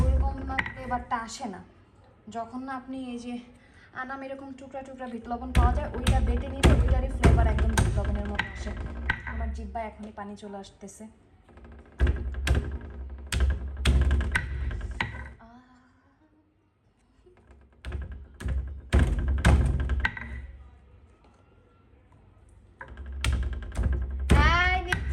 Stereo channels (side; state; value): both; identical; correlation 1.00